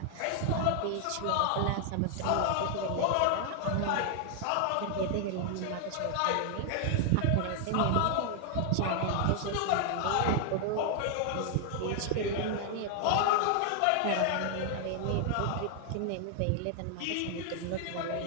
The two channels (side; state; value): both; different; correlation 0.00